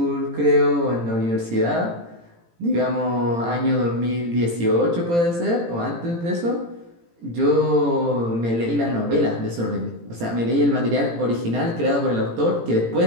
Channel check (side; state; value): left; late; 18 ms